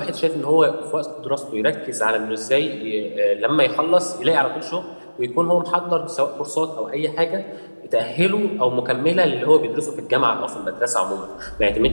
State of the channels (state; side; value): inverted; both; correlation -1.00